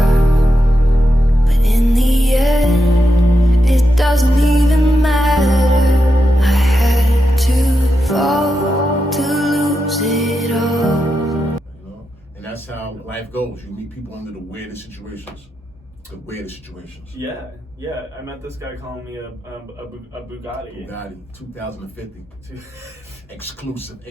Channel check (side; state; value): both; normal; correlation 0.87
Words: but in the end, it doesn't even matter. I had to fall to lose it all. You know, and that's how life goes. You meet people under the weirdest situations. The weirdest situations. Yeah. I met this guy calling me a Bugatti. Bugatti, 2050. Exclusive,